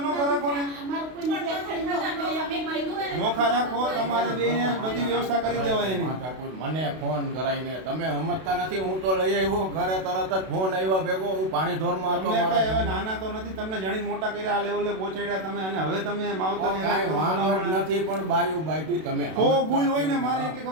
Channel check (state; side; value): late; left; 32 ms